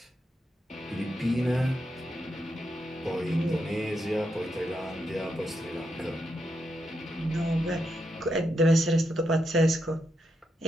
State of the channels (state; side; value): normal; both; correlation 0.83